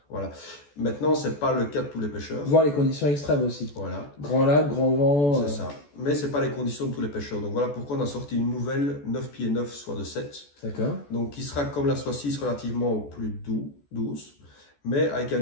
Voilà. Maintenant, c'est pas le cas de tous les pêcheurs. Voir les conditions extrêmes aussi. Voilà. Grand lac, grand vent. C'est ça. Mais c'est pas les conditions de tous les pêcheurs. Donc voilà pourquoi on a sorti une nouvelle 9 pieds 9 soit de 7. D'accord. Donc qui sera comme la soit 6 relativement plus douce, mais avec un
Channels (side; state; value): right; late; 14 ms